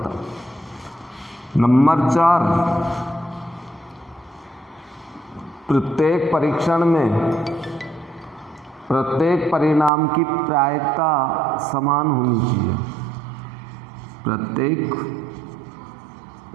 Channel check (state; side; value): drops out; left; at 9.9 s